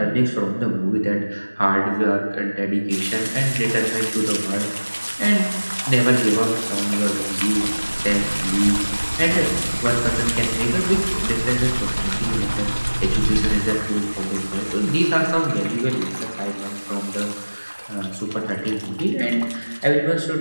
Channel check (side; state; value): both; inverted; correlation -1.00